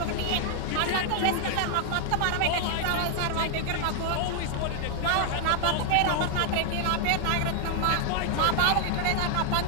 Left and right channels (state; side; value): different; both; correlation 0.00